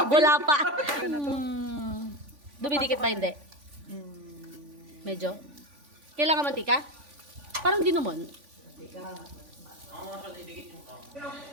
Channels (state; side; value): late; left; 3.5 ms